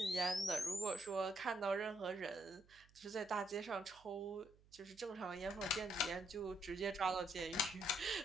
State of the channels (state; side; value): noise; right; hum, 27 dB below the sound